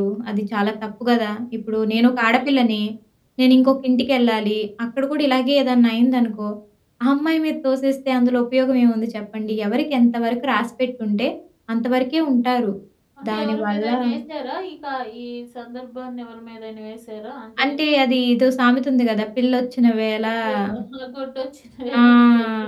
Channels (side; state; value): both; identical; correlation 1.00